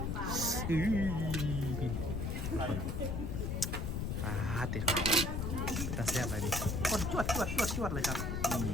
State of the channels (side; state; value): left; noise; rumble, 1 dB below the sound